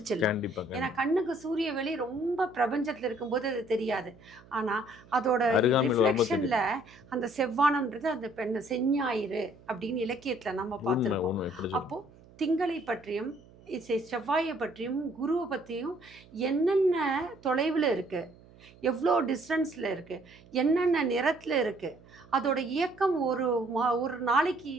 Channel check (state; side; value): noise; right; hum, 24 dB below the sound